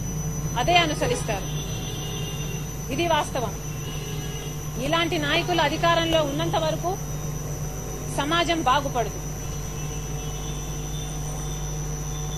అదే అనుసరిస్తారు. ఇది వాస్తవం. ఇలాంటి నాయకులు అధికారంలో ఉన్నంత వరకు సమాజం బాగుపడదు.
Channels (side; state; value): both; identical; correlation 1.00